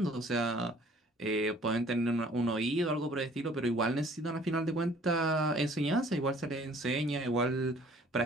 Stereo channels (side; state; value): both; normal; correlation 0.55